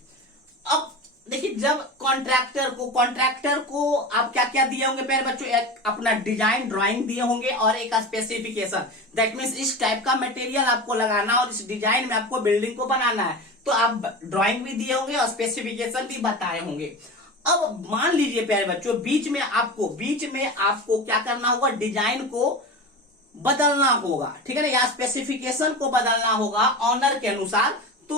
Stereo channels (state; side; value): normal; both; correlation 0.28